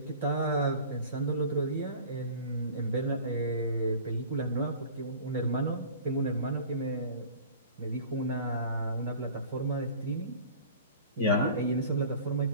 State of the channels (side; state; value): both; inverted; correlation -0.42